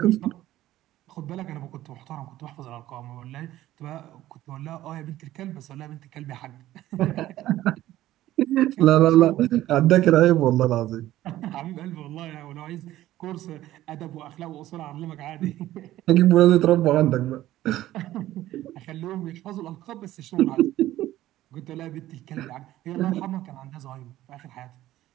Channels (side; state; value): left; quieter; 14.6 dB